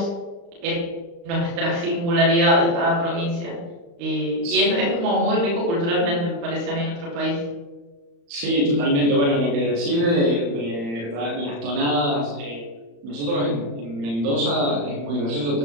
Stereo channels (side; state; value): left; late; 35 ms